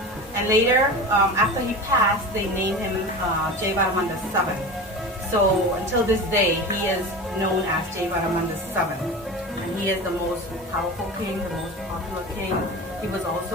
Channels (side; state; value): both; normal; correlation 0.30